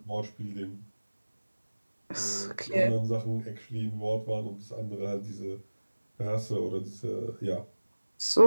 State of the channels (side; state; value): both; inverted; correlation -1.00